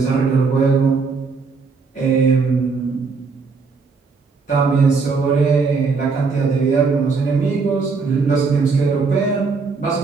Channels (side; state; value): left; quieter; 4.7 dB